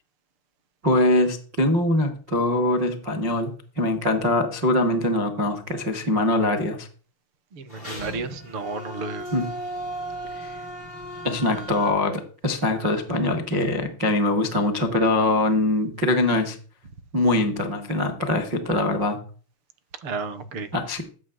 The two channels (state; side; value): late; left; 5.6 ms